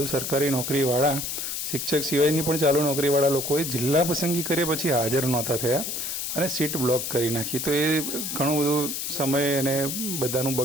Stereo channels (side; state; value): left; noise; hiss, 3 dB below the sound